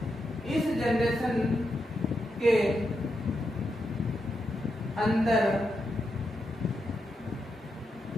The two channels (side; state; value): both; normal; correlation 0.85